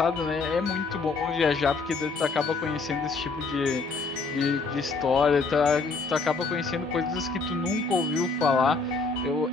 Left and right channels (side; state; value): right; quieter; 4.2 dB